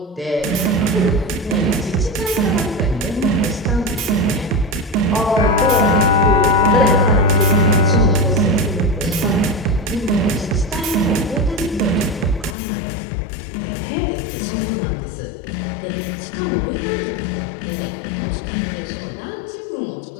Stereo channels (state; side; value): drops out; right; at 12.6 s